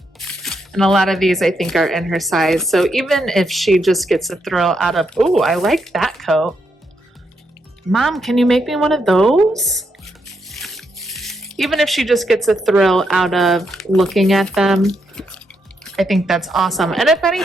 And a lot of these I think are in her size. So even if she just gets a thrill out of, oh, I like that coat. Mom, can you make me one of those? Even if she just gets a thrill out of looking at them, I think that's awesome. And if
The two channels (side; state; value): both; normal; correlation 0.80